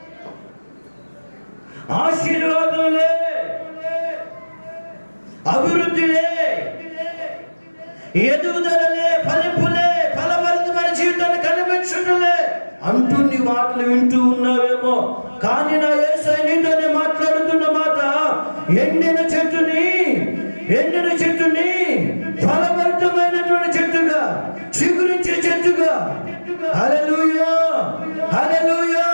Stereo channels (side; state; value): both; inverted; correlation -1.00